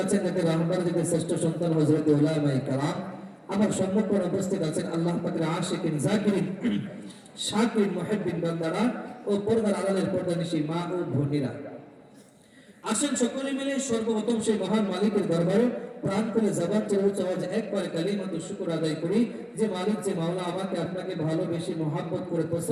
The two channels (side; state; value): both; identical; correlation 1.00